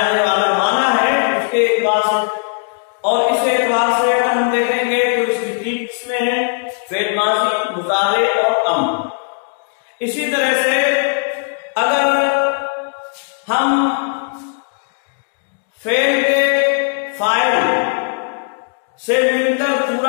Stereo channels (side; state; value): right; silent; digital silence